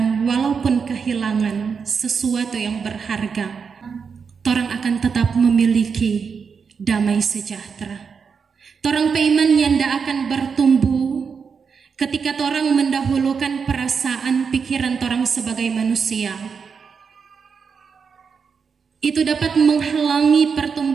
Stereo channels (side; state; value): left; quieter; 5.9 dB